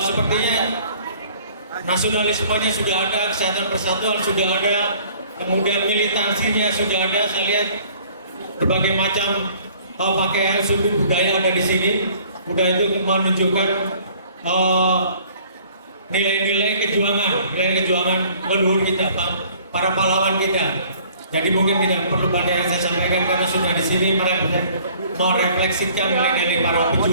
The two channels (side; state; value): both; inverted; correlation -0.55